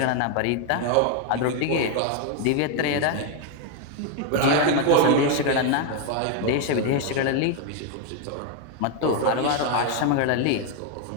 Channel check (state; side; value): different; both; correlation 0.01